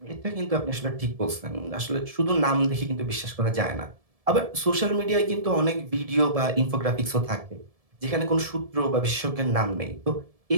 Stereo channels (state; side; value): late; left; 1.7 ms